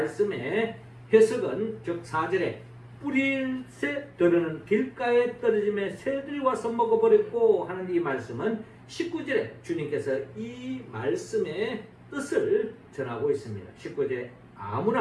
해석은 즉 4절에 뿌릴새 들으는 길가에 떨어짐에 새들이 와서 먹어버렸고 하는 이 말씀은 19절에 주님께서 이 말씀의 뜻을 전하고 있습니다. 19절에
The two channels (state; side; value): identical; both; correlation 1.00